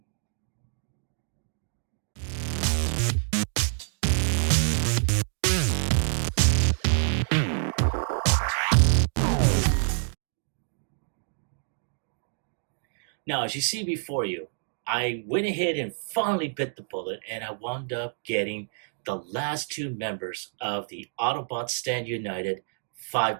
Now, as you see before you, I went ahead and finally bit the bullet, and I wound up getting the last two members of the Autobots Stand United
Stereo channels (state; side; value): silent; left; digital silence